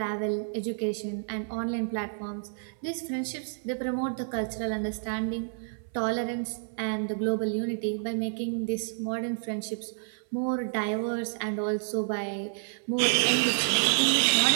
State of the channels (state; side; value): silent; left; 58 dB below the other